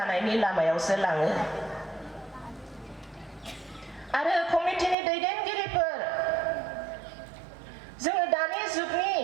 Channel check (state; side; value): drops out; left; at 5.0 s